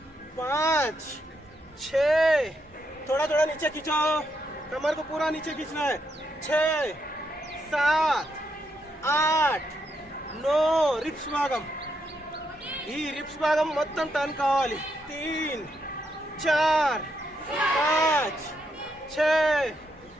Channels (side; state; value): both; normal; correlation 0.80